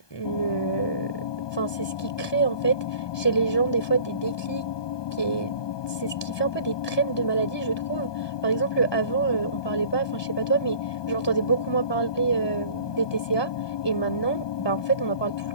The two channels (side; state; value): right; late; 1.2 ms